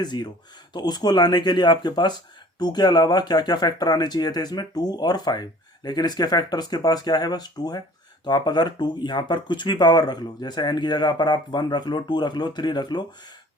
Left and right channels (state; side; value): normal; both; correlation 0.49